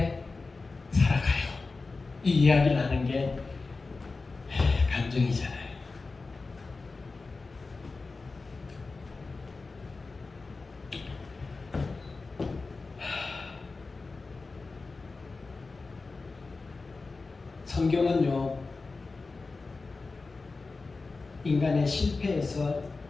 살아가요. 이 이야기를 하는 게 감정이잖아요. 성경은요, 인간의 실패에서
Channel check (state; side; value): quieter; right; 3.9 dB